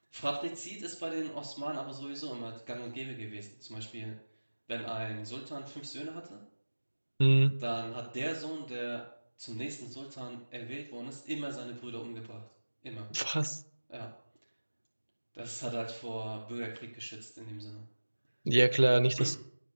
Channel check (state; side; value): inverted; both; correlation -1.00